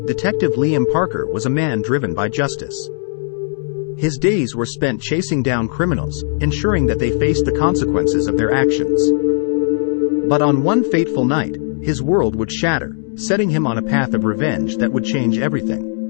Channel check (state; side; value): silent; right; digital silence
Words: Detective Liam Parker was a man driven by justice. His days were spent chasing down criminals, ensuring that they faced the consequences of their actions. But on one fateful night, his world would shatter, setting him on a path of revenge that would change